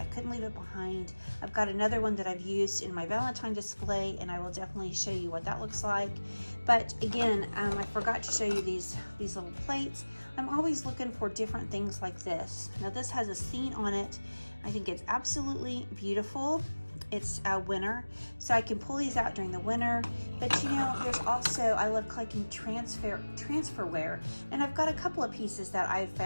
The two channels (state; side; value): inverted; both; correlation -1.00